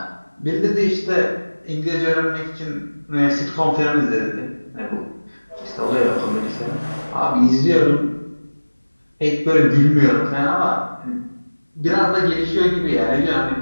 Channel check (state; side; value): inverted; both; correlation -1.00